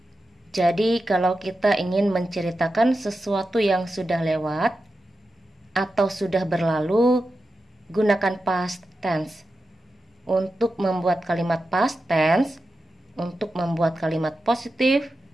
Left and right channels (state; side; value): normal; both; correlation 0.91